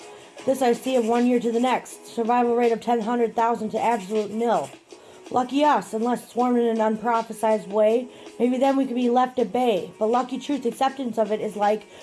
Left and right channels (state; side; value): identical; both; correlation 1.00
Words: This I see of 1 year to the next, survival rate of 10,000 to absolute nil. Lucky us, unless swarmed in an unprophesized way, maybe then we could be left at bay. But lucky truth acceptance of it is like